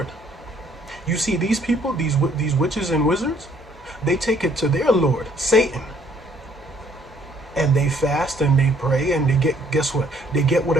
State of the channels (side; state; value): both; normal; correlation 0.63